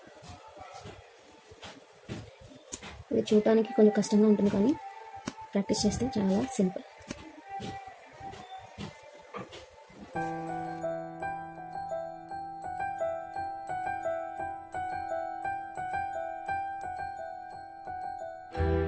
ఇది చూడటానికి కొంచెం కష్టంగా ఉంటుంది, కానీ ప్రాక్టీస్ చేస్తే చాలా సింపుల్.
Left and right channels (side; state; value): both; identical; correlation 1.00